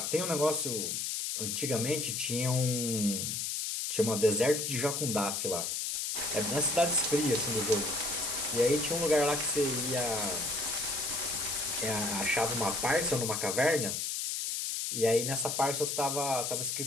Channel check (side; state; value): left; noise; hiss, 1 dB below the sound